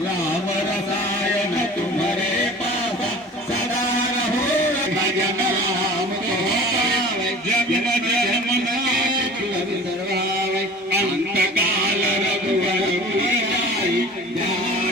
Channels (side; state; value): both; normal; correlation 0.42